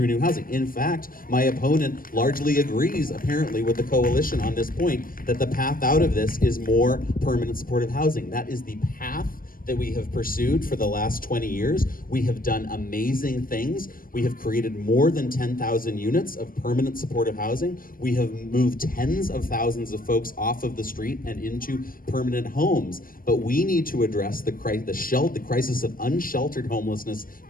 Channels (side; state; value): right; late; 0.41 ms